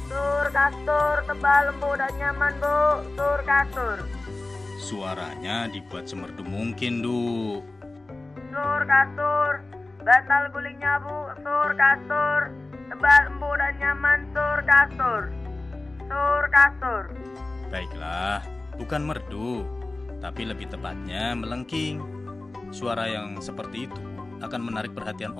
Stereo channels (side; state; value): right; quieter; 3.1 dB